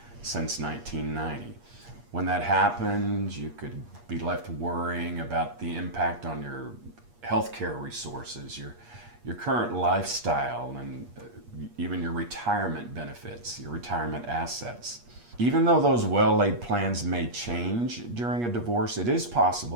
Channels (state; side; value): late; left; 8.4 ms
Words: since 1990. When that happens, you could be left worrying about the impact on your healthcare resources, your current lifestyle, and even your retirement benefits, your retirement assets. Even though those well-laid plans may change during a divorce, it is